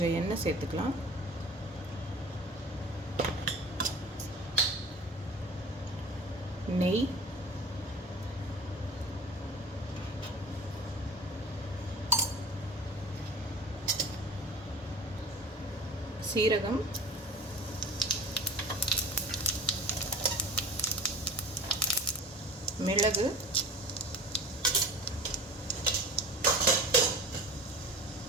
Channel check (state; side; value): normal; both; correlation 0.38